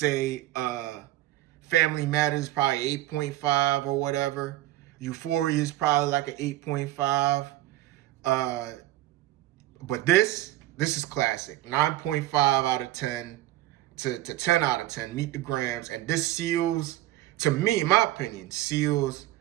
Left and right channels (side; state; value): left; quieter; 15.4 dB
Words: Family Matters probably 8.5 or whatever. Euphoria is probably like an 8.5. But this is classic. 9.5 out of 10 to 10 out of 10. Meet the Grams. And this seals, to me, in my opinion, seals